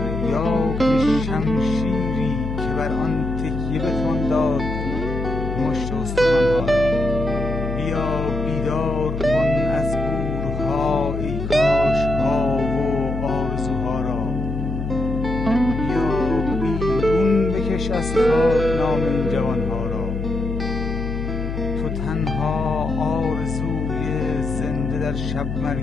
یا که شمشیری که بر آن تکیه بتوان داد مشت استخوانها را. بیا بیدار کن از گورها ای کاشها و آرزوها را. بیا بیرون بکش از خاک نام این جوانها را. تو تنها آرزوی زنده در شب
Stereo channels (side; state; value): left; noise; hum, 4 dB below the sound